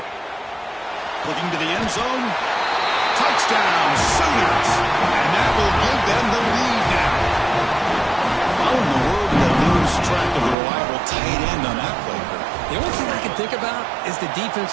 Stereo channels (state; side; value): drops out; left; at 10.6 s